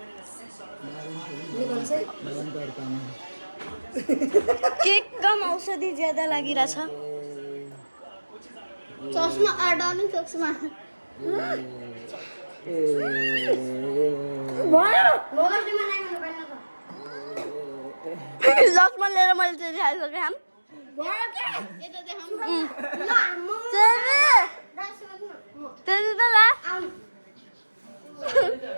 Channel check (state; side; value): inverted; both; correlation -1.00